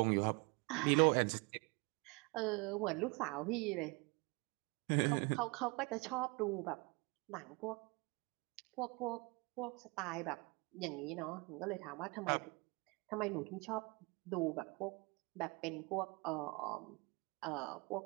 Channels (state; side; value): quieter; left; 28.3 dB